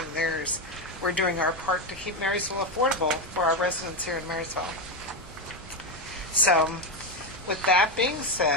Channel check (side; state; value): both; normal; correlation 0.10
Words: theirs, we're doing our part to keep Marysville affordable for our residents here in Marysville. So with that being